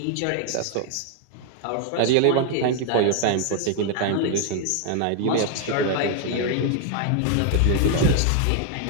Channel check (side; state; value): both; different; correlation 0.00